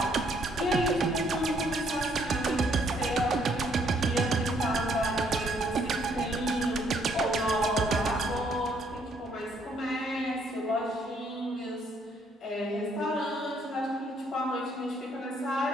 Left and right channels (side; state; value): both; normal; correlation 0.67